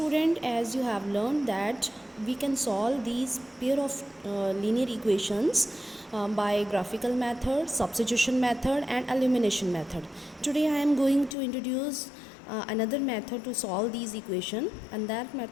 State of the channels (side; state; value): right; drops out; at 11.4 s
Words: as you have learned that we can solve these pair of linear equations by graphical method, substitution method and elimination method. Today I am going to introduce another method to solve these equations, and that